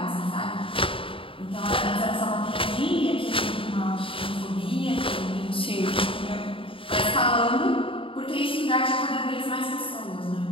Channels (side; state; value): right; late; 0.26 ms